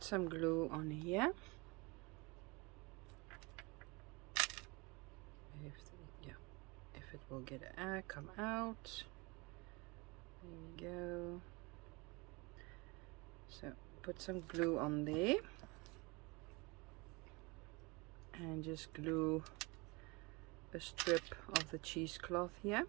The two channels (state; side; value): quieter; left; 26.6 dB